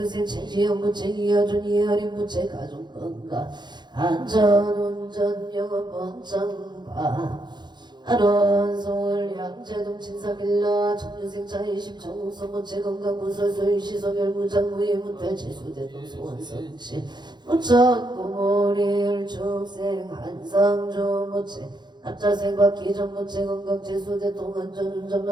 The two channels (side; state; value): left; late; 0.21 ms